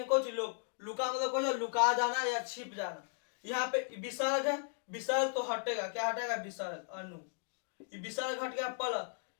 कुछ लोप, लुका मतलब कुछ लुका जाना या छिप जाना। यहाँ पे विसर्ग है, विसर्ग तो हटेगा, क्या हटेगा, विसर्ग अनु, ये विसर्ग हट गया प्लस,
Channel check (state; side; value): silent; right; 54 dB below the other